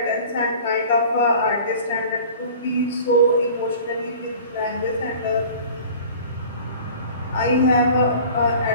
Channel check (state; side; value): inverted; both; correlation -0.44